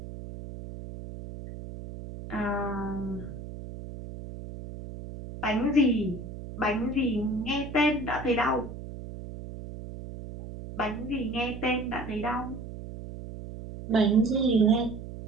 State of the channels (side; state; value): right; noise; hum, 11 dB below the sound